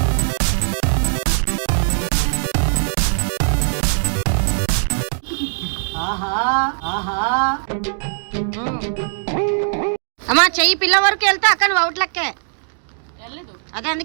అమ్మా చెయ్యి పిల్ల వరకు వెళ్తే అక్క నువ్వు అవుట్ లెక్కే. వెళ్ళలేదు అదే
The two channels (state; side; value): silent; left; digital silence